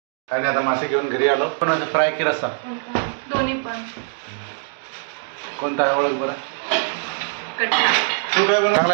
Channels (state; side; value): silent; left; digital silence